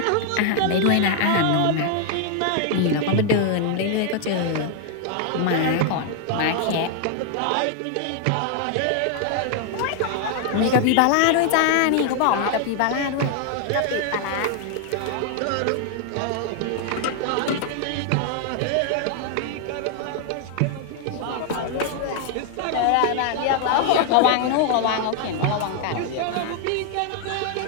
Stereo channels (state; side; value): different; both; correlation 0.00